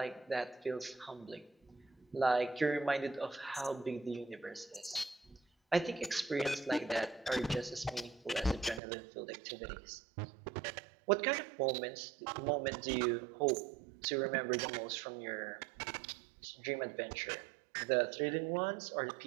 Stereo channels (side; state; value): left; drops out; at 8.8 s